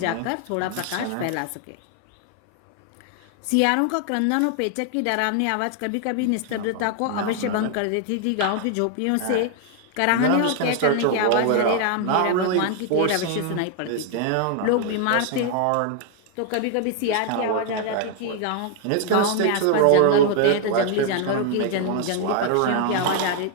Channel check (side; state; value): both; different; correlation 0.00